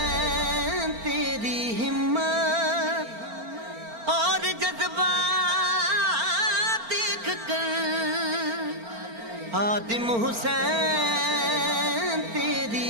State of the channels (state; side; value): late; left; 4.4 ms